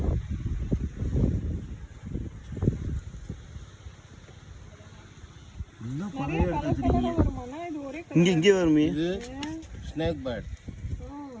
இங்க இங்கே வருமே. இது ஸ்னேக் பேர்ட்.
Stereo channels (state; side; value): identical; both; correlation 1.00